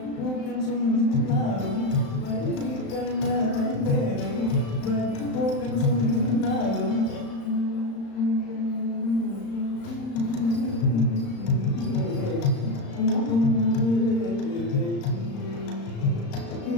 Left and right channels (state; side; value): late; right; 35 ms